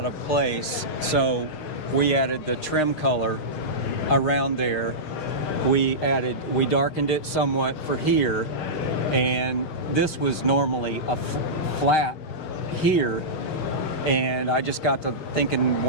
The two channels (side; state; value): right; late; 6.5 ms